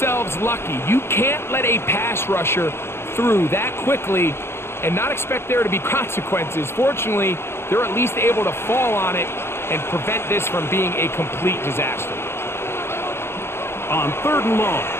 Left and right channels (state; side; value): late; right; 0.12 ms